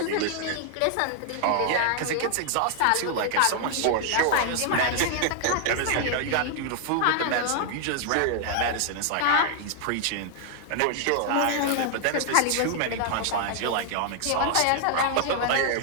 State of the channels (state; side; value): different; both; correlation 0.00